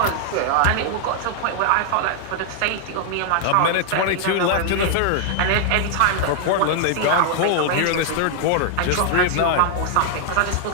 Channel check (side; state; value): both; different; correlation -0.01